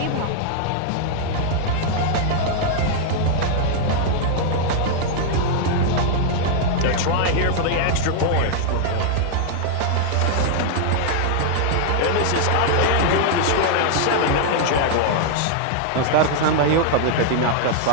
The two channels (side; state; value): both; different; correlation 0.00